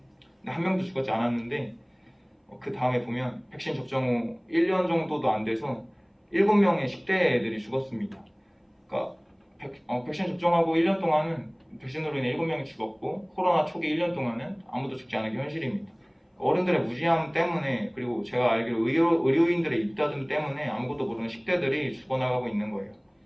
한 명도 죽지 않았는데 그 다음에 보면 백신 접종 후 1년 정도도 안 돼서 7명의 10대 애들이 죽었습니다. 그러니까 백신 접종하고 1년 동안은 백신으로 인해 7명이 죽었고 코로나 초기 1년 동안은 아무도 죽지 않은 게 현실입니다. 어른들의 무지함 때문에 그리고 제가 알기로 의료인들의 입다툼 때문에 아무것도 모르는 10대들이 죽어나가고 있는 거예요.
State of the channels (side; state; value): both; identical; correlation 1.00